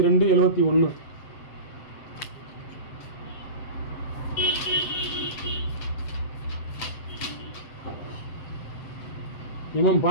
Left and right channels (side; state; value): right; late; 7.7 ms